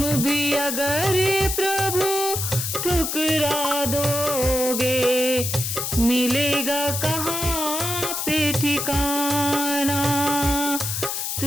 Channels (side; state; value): left; noise; hiss, 2 dB below the sound